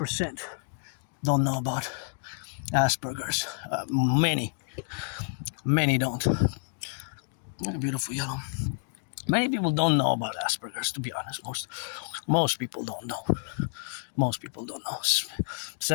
don't know about Asperger's. Many don't. Beautiful yellow. Many people don't know about Asperger's, to be honest. Most people don't know. Most people don't know.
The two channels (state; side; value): silent; right; 57 dB below the other